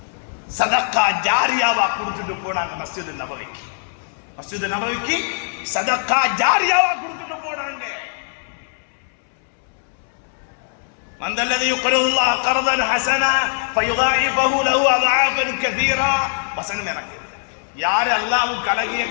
சதகா ஜாரியாவா கொடுத்துட்டு போனாங்க மஸ்ஜித் நபவிக்கு சதகா ஜாரியாவா கொடுத்துட்டு போனாங்க. மந்தல்லதி யுக்ரிதுல்லாஹ கர்தன் ஹஸனா ஃபயுதாயிஃபஹு லஹு அத்ஆஃபன் கஸீரா. வசனம் எனக்கு யார் அல்லாஹ்வுக்கு அழகிய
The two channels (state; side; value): silent; right; 65 dB below the other